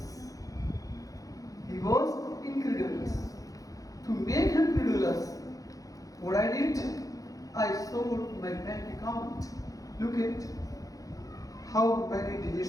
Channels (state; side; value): late; right; 0.17 ms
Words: He was incredulous. To make him credulous, what I did, I showed my bank account. Look at how many